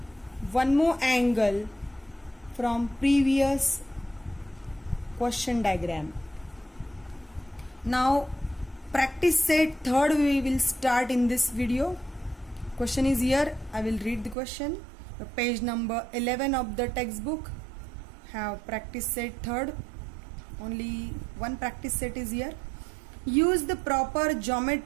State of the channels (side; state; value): left; drops out; at 14.4 s